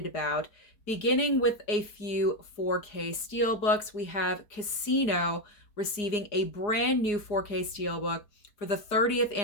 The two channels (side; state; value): right; late; 4.8 ms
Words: about. Beginning with a few 4K Steelbooks, we have Casino receiving a brand new 4K Steelbook for the 30th